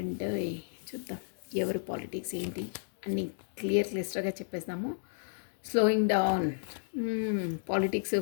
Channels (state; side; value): silent; right; digital silence